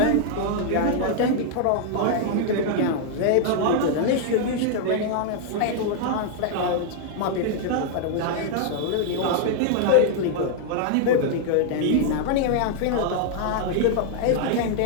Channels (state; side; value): different; both; correlation -0.01